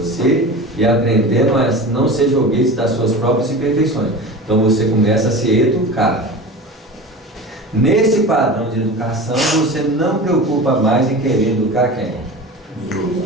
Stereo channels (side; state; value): both; normal; correlation 0.32